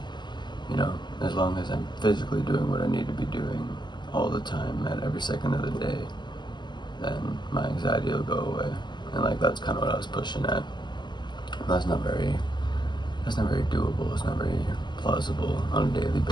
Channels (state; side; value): late; right; 0.21 ms